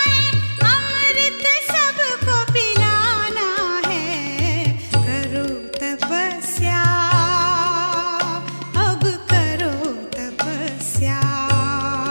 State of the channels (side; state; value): both; inverted; correlation -1.00